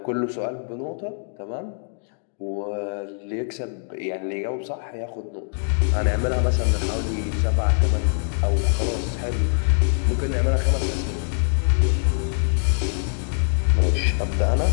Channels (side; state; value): right; silent; digital silence